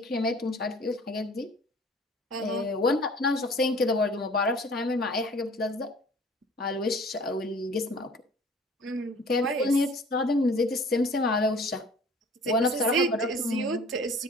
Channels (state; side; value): normal; both; correlation 0.49